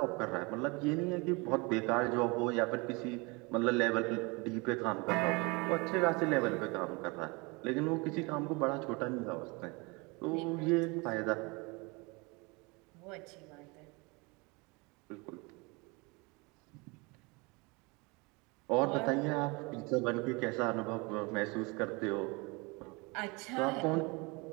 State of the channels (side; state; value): left; quieter; 27.6 dB